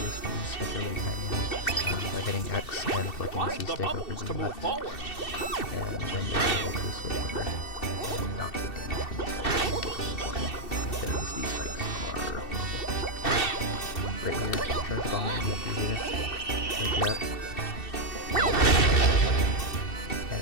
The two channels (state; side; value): late; right; 2.7 ms